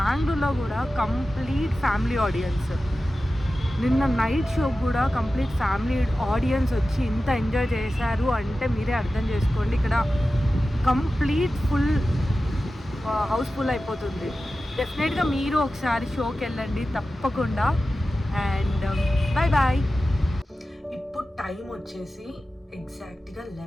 కూడా కంప్లీట్ ఫ్యామిలీ ఆడియన్స్. నిన్న నైట్ షో కూడా కంప్లీట్ ఫ్యామిలీ ఆడియన్స్ వచ్చి ఇంత ఎంజాయ్ చేశారు అంటే మీరే అర్థం చేసుకోండి. ఇక్కడ కంప్లీట్ హౌస్ఫుల్ అయిపోతుంది. డెఫినెట్గా మీరు ఒకసారి షోకి వెళ్ళండి తప్పకుండా. And bye. ఇప్పుడు టైం వచ్చేసి ఎగ్జాక్ట్గా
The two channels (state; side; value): normal; both; correlation 0.94